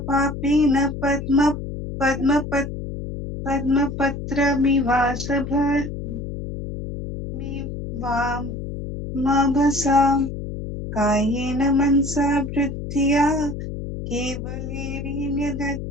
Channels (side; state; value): left; noise; hum, 7 dB below the sound